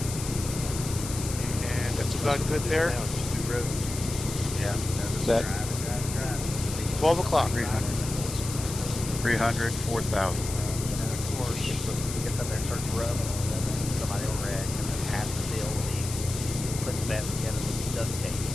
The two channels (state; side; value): noise; left; hiss, 8 dB below the sound